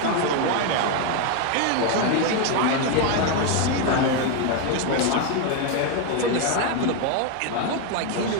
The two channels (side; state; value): both; different; correlation 0.01